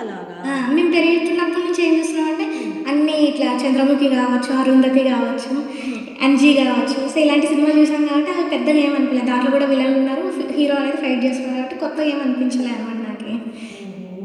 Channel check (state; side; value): identical; both; correlation 1.00